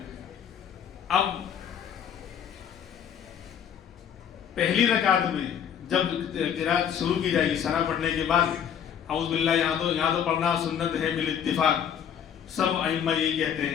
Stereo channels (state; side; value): quieter; right; 8.6 dB